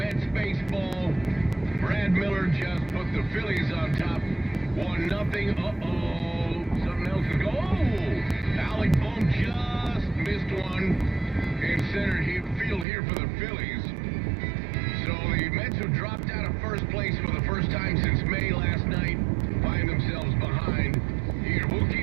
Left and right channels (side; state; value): left; drops out; at 12.9 s